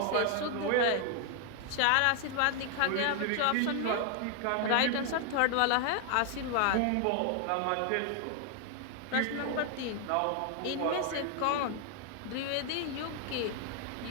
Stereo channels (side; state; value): both; different; correlation 0.00